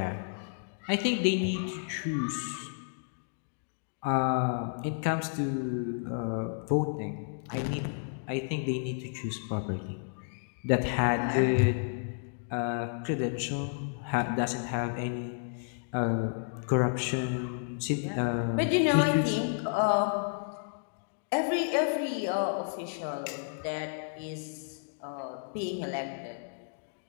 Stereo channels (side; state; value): right; silent; digital silence